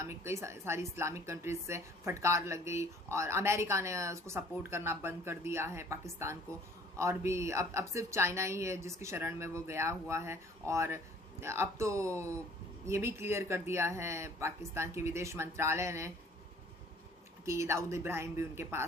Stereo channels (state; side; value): normal; both; correlation 0.54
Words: कई सारी इस्लामिक कंट्रीज से फटकार लग गई, और अमेरिका ने उसको सपोर्ट करना बंद कर दिया है पाकिस्तान को। और भी अब सिर्फ चाइना ही है जिसकी शरण में वो गया हुआ है। और अब तो ये भी क्लियर कर दिया है पाकिस्तान के विदेश मंत्रालय ने कि दाऊद इब्राहिम भी उनके